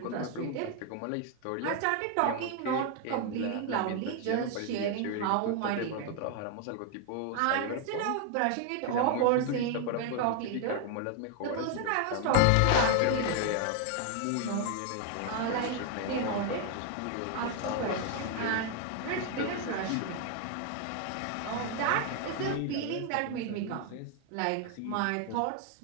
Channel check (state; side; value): different; both; correlation 0.00